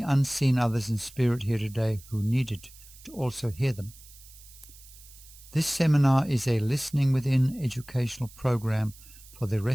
unseen others in spirit here today who needed to also hear them. This seminar is a listening within educational program for the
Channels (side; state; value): right; noise; hiss, 21 dB below the sound